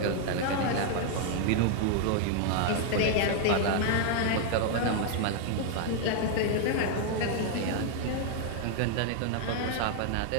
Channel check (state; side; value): different; both; correlation 0.00